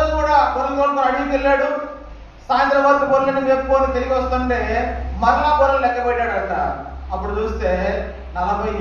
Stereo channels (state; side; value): identical; both; correlation 1.00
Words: కూడా గొర్రెలు కొనుక్కొని అడిగికి వెళ్ళాడు. సాయంత్రం వరకు గొర్రెలను మేపుకొని తిరిగి వస్తుంటే మరలా గొర్రెలు లెక్క పెట్టాడంట. అప్పుడు చూస్తే